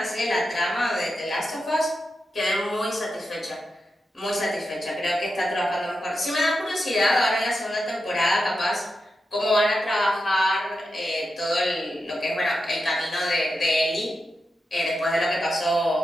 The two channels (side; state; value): both; normal; correlation 0.89